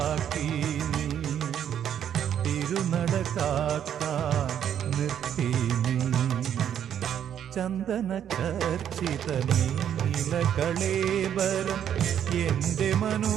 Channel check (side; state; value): left; quieter; 9.5 dB